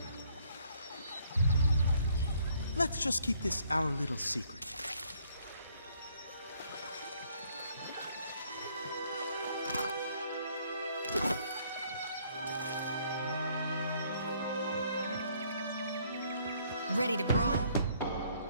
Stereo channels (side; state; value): both; inverted; correlation -0.65